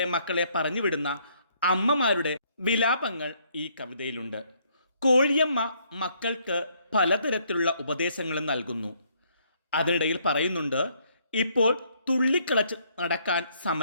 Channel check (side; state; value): both; inverted; correlation -0.68